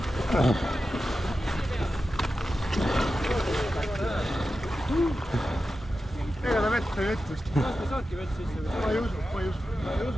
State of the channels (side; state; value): both; normal; correlation 0.91